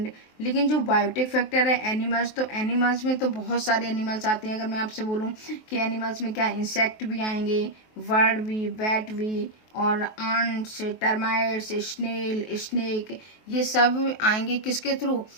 लेकिन जो बायोटिक फैक्टर है एनिमल्स, तो एनिमल्स में तो बहुत सारे एनिमल्स आते हैं। अगर मैं आपसे बोलूं कि एनिमल्स में क्या, इंसेक्ट भी आएंगे, बर्ड भी, बैट भी, और आंट्स, टर्माइट्स, स्नेल, स्नेक, ये सब आएंगे किसके थ्रू,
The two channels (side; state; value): right; late; 23 ms